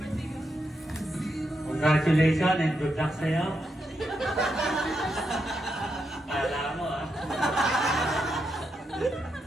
Congratulations and good luck sa'yo. Kala mo, ah.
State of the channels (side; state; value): both; normal; correlation 0.84